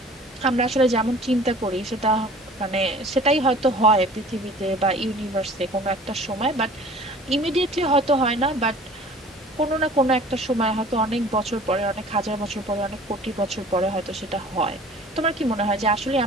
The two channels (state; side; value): normal; both; correlation 0.46